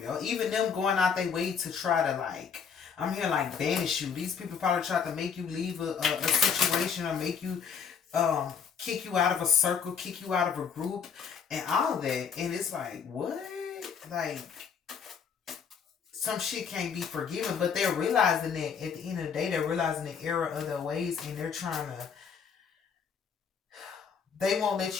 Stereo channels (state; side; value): quieter; right; 6.7 dB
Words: Even them going out their way to try to, like, I'm here like banish you. These people probably try to make you leave a situation, or make you kick you out of a circle, kick you out of a group, and all that. And it's like, what? Like, some shit can't be forgiven, but they're realizing that at the end of the day, they're realizing the error of their ways, and they're trying to, they won't